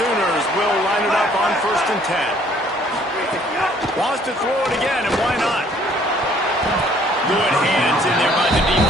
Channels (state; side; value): normal; both; correlation 0.60